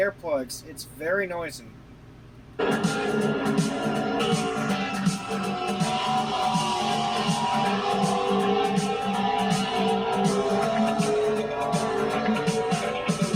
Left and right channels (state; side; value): identical; both; correlation 1.00